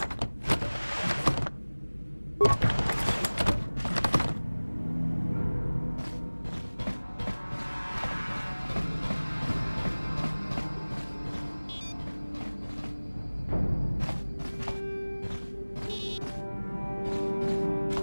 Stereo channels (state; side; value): inverted; both; correlation -1.00